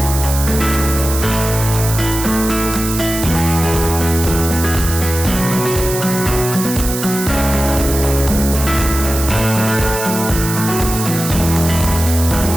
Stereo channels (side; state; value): right; noise; hiss, 6 dB below the sound